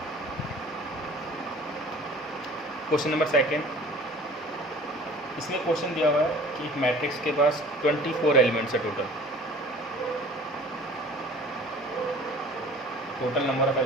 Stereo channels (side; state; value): both; normal; correlation 0.47